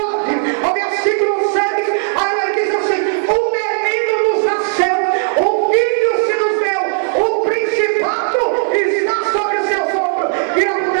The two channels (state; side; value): silent; left; digital silence